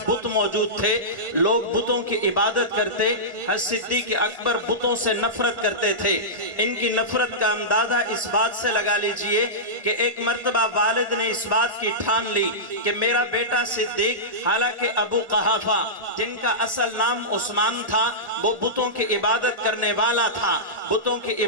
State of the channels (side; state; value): left; late; 1.5 ms